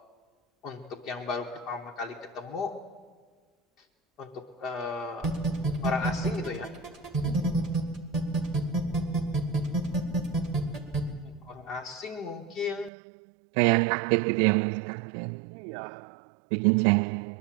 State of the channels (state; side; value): drops out; left; at 12.9 s